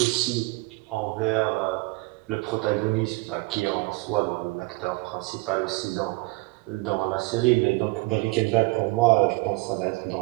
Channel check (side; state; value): left; quieter; 24.2 dB